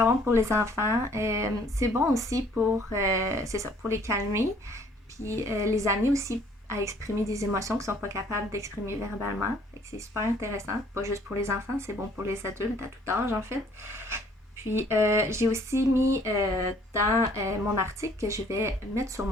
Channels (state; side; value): normal; both; correlation 0.60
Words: bon pour les enfants. C'est bon aussi c'est ça, pour les calmer. Puis les amener aussi à exprimer des émotions qu'ils ne sont pas capables d'exprimer verbalement. Fait que c'est super intéressant. Pas juste pour les enfants, c'est bon pour les adultes à tout âge en fait. Puis j'ai aussi mis dans mon article que je vais mettre sur